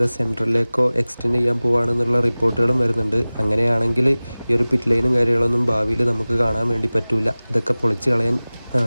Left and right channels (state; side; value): inverted; both; correlation -0.99